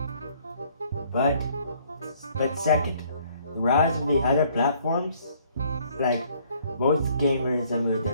But second, the rise of the other platforms, like most gamers have moved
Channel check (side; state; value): both; inverted; correlation -0.62